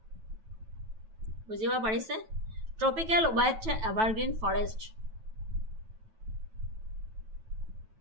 বুজিব পাৰিছে? Tropical wet evergreen forest.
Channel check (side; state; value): left; late; 9.1 ms